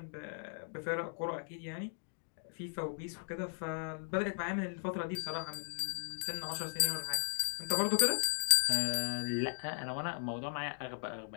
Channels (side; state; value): right; silent; digital silence